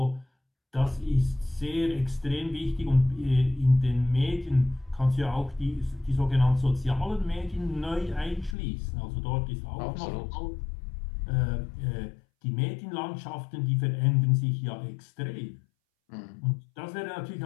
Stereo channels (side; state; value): right; drops out; at 8.6 s